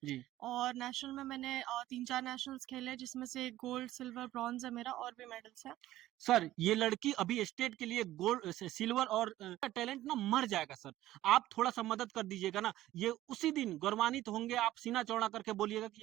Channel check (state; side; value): quieter; left; 14.9 dB